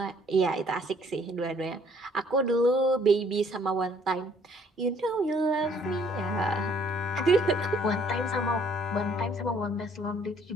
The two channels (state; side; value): normal; both; correlation 0.61